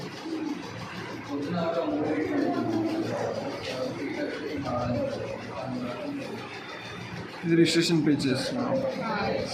ఇది రిజిస్ట్రేషన్ పేజ్ చేస్తున్నాం.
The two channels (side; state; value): both; identical; correlation 1.00